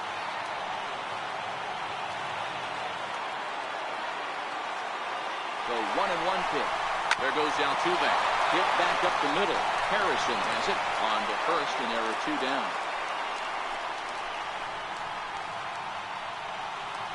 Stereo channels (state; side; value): identical; both; correlation 1.00